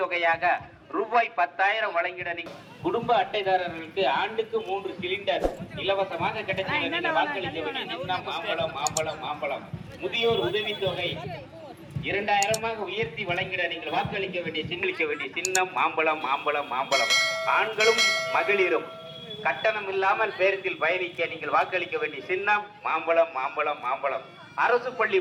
ரூபாய் 10,000 வழங்கிட குடும்ப அட்டைதாரர்களுக்கு ஆண்டுக்கு 3 சிலிண்டர் இலவசமாக கிடைச்ச வாக்களிக்க வேண்டிய சின்னம் மாம்பழம் மாம்பழம் மாம்பழம். முதியோர் உதவித்தொகை 2000 உயர்த்தி வழங்கிட நீங்கள் வாக்களிக்க வேண்டிய சின்னம் மாம்பழம் மாம்பழம் மாம்பழம். ஆண்களும் மகளிரும் கட்டணம் இல்லாமல் பேருந்தில் பயணிக்க நீங்கள் வாக்களிக்க வேண்டிய சின்னம் மாம்பழம் மாம்பழம் மாம்பழம். அரசு பள்ளி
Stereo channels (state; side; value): identical; both; correlation 1.00